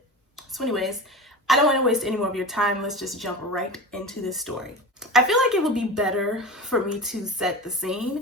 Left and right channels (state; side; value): normal; both; correlation 0.30